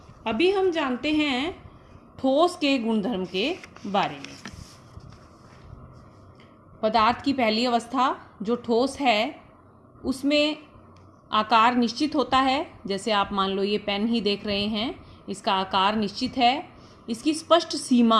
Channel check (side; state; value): both; identical; correlation 1.00